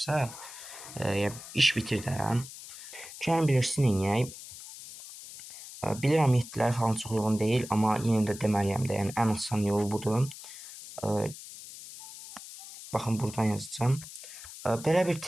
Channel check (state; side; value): noise; left; hiss, 14 dB below the sound